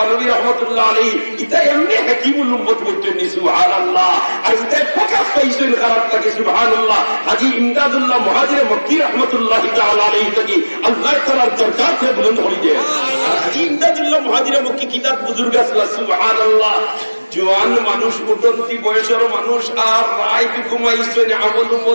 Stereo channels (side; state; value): both; inverted; correlation -1.00